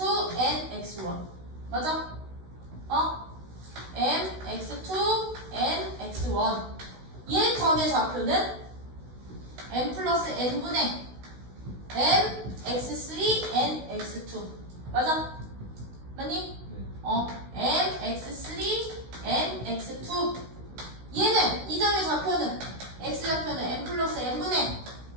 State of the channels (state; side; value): late; left; 16 ms